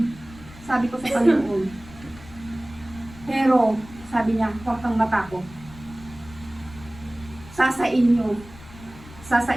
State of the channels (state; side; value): noise; left; rumble, 19 dB below the sound